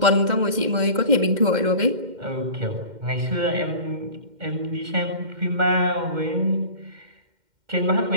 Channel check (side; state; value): left; late; 2.1 ms